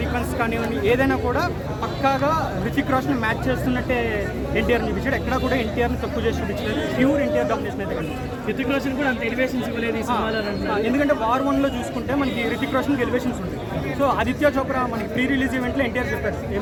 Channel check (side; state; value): both; identical; correlation 1.00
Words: సీక్వెన్స్ కానివ్వండి, ఏదైనా కూడా పక్కాగా హృతిక్ రోషన్ మ్యాచ్ చేస్తున్నట్టే ఎన్టీఆర్ చూపించాడు. ఎక్కడ కూడా ఎన్టీఆర్ని తక్కువ చేసి చూపించలేదు. ప్యూర్ ఎన్టీఆర్ డామినేషన్ అయితే కనిపిస్తుంది. హృతిక్ రోషన్ కూడా అంత ఎలివేషన్స్ ఇవ్వలేదు ఈ సినిమాలో. ఎందుకంటే వార్ 1లో చూసుకుంటే మనకి హృతిక్ రోషన్కి ఎలివేషన్స్ ఉంటాయి. సో ఆదిత్య చోప్రా మనకి ప్రీ రిలీజ్ ఈవెంట్లో ఎన్టీఆర్ చెప్పారు